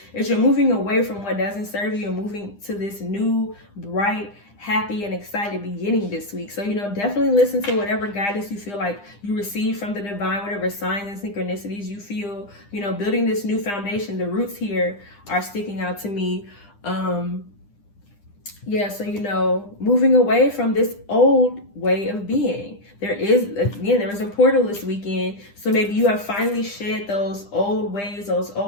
is you're moving away from what doesn't serve you and moving to this new, bright, happy and excited beginning this week. So, you know, definitely listen to whatever guidance you feel like you receive from the divine, whatever signs and synchronicities you feel, you know, building this new foundation. The roots here are sticking out to me. Yeah, so, you know, moving away from this old way of being. There is a portal this weekend. So maybe you have finally shed those old ways, those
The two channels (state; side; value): late; right; 9.9 ms